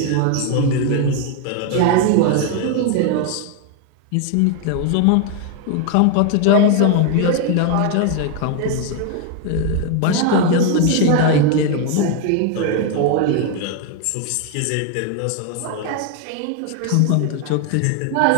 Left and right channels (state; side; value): different; both; correlation 0.01